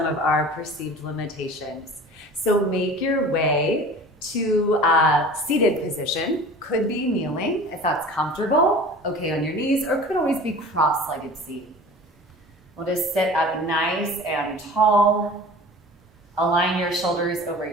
of our perceived limitations. So make your way to a seated position. Could be kneeling if that's comfortable, okay on your knees, or could always be cross-legged seated. We'll just sit up nice and tall. Align your shoulders over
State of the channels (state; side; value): normal; both; correlation 0.40